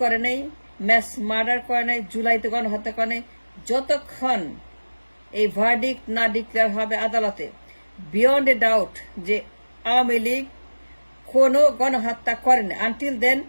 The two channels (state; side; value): inverted; both; correlation -1.00